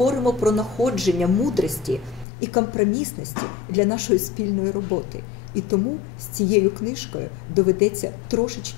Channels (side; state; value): right; drops out; at 2.2 s